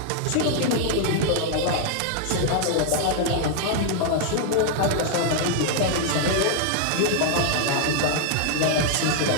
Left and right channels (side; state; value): both; different; correlation 0.00